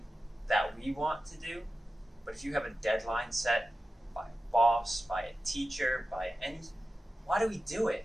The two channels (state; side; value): normal; both; correlation 0.94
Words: that we want to do, but if you have a deadline set by a boss, by a teacher, why do we do it?